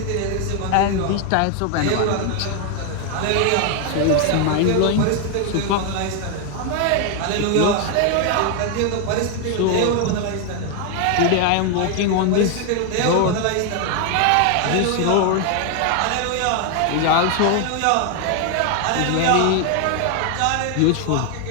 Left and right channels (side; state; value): both; different; correlation 0.01